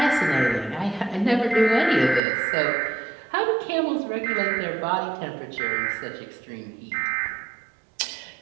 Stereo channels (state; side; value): drops out; left; at 2.2 s